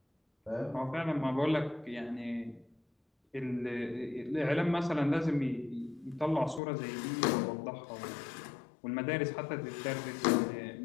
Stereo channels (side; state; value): right; drops out; at 6.6 s